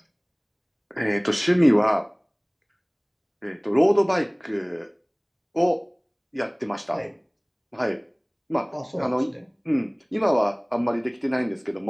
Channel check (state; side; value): identical; both; correlation 1.00